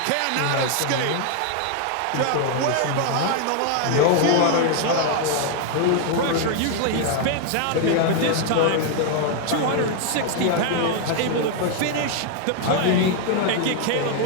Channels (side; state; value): both; different; correlation 0.00